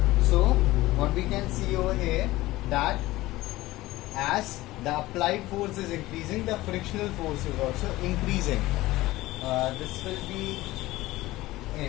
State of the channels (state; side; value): quieter; right; 18.0 dB